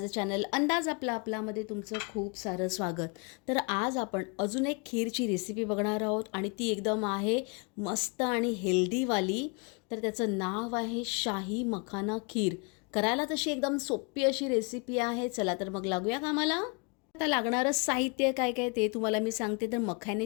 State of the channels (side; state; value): right; quieter; 33.8 dB